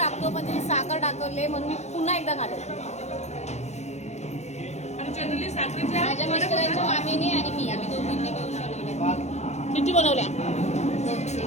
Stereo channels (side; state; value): right; late; 0.33 ms